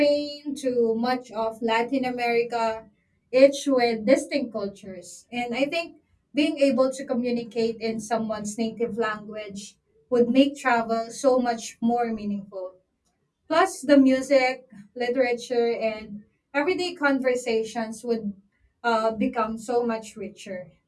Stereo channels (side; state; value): both; identical; correlation 1.00